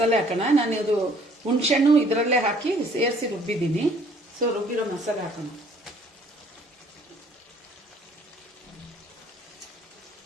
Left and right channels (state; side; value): normal; both; correlation 0.59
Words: ಹಾಕೋಣ. ನಾನು ಇದು ಹುಣಸೆಹಣ್ಣು ಇದರಲ್ಲೇ ಹಾಕಿ ಸೇರಿಸಿ ರುಬ್ಬಿದ್ದೀನಿ. ಸೊ ರುಬ್ಬಿರೋ ಮಸಾಲೆ ಹಾಕೋಣ.